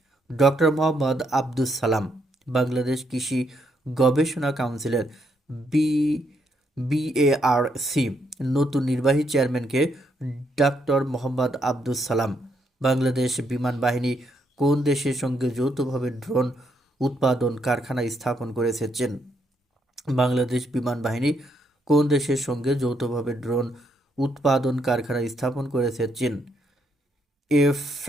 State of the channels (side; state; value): both; normal; correlation 0.75